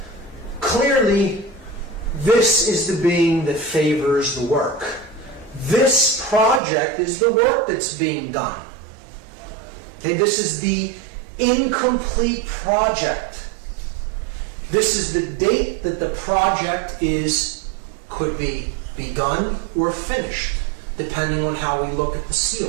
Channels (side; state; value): left; drops out; at 6.6 s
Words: clearly, this is the being that favors the work. This project is the work that's being done. Okay, this is the incomplete project. This is the date that the project could be begun or finished, depending on how we look at the